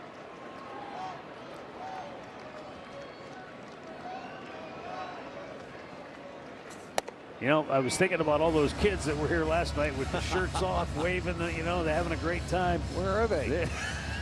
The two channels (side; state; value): both; identical; correlation 1.00